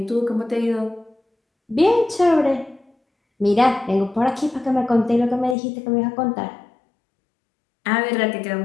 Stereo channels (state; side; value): drops out; right; at 5.6 s